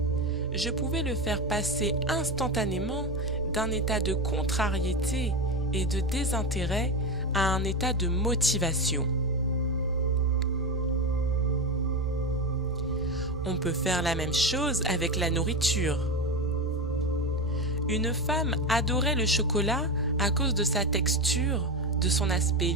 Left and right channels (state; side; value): normal; both; correlation 0.16